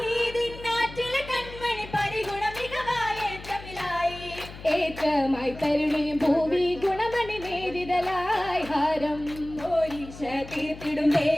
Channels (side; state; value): left; noise; hum, 15 dB below the sound